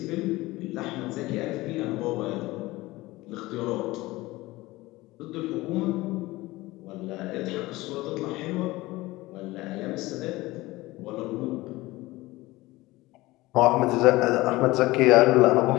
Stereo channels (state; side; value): quieter; right; 19.5 dB